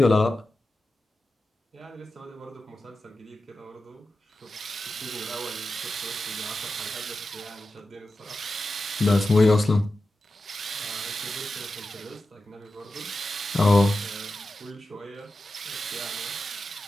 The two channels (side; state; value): both; normal; correlation 0.92